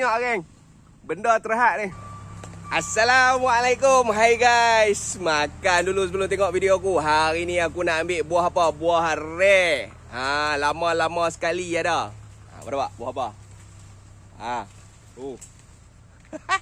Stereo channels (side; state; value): both; identical; correlation 1.00